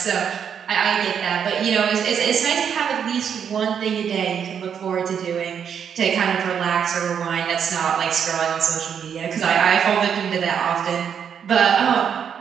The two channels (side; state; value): left; quieter; 7.8 dB